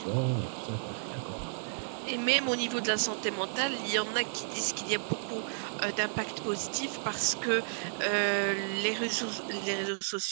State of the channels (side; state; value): left; silent; digital silence